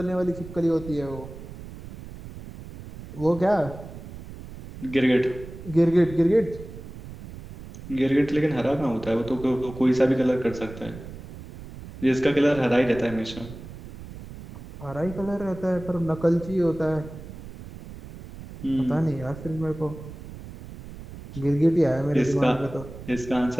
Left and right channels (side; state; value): right; noise; rumble, 14 dB below the sound